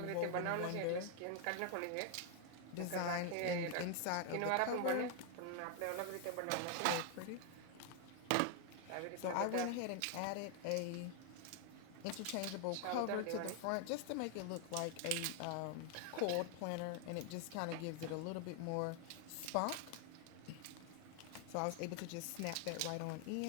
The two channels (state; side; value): different; both; correlation 0.00